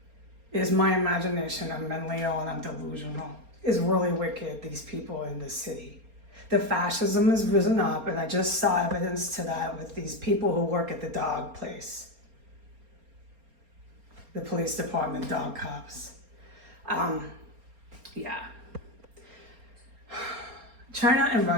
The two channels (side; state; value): left; late; 4.3 ms